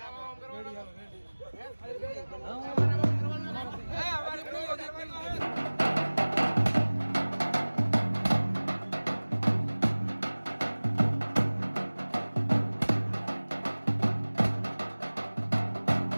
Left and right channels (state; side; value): inverted; both; correlation -1.00